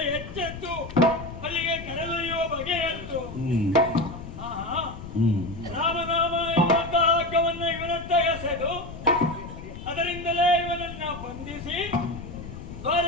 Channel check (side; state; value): left; noise; rumble, 11 dB below the sound